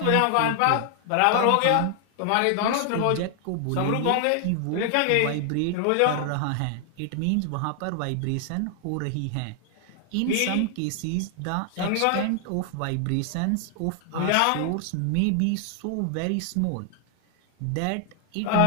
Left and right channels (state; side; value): different; both; correlation 0.00